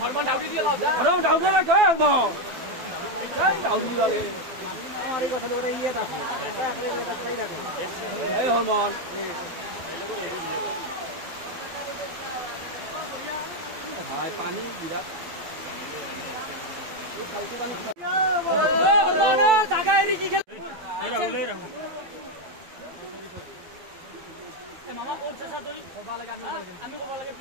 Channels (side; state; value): left; late; 12 ms